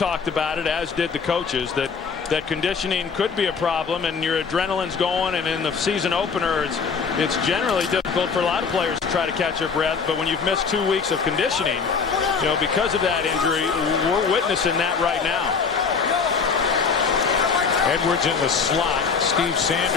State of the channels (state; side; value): quieter; right; 5.6 dB